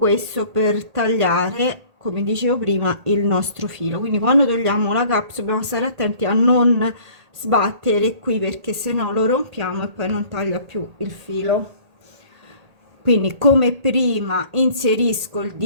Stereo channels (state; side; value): late; left; 1.8 ms